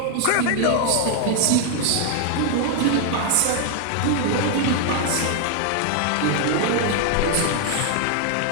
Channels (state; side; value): different; both; correlation 0.01